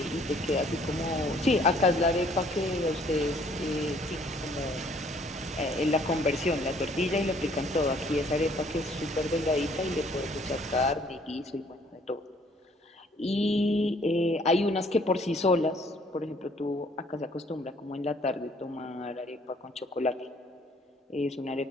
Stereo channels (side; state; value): both; normal; correlation 0.61